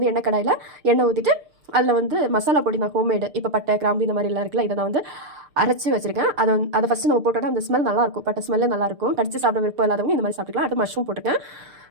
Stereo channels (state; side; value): late; left; 6.7 ms